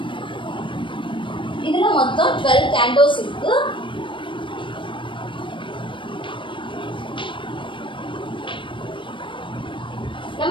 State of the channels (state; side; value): late; right; 0.24 ms